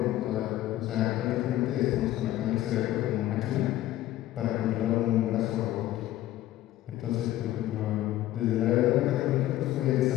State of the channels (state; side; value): quieter; right; 14.2 dB